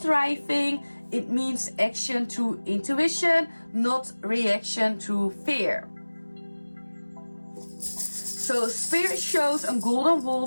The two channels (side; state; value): both; inverted; correlation -1.00